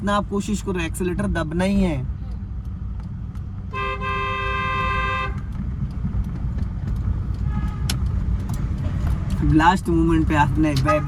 आप कोशिश करो, एक्सीलेटर दबना ही है। लास्ट मोमेंट पे आपने बैक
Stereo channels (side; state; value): both; identical; correlation 1.00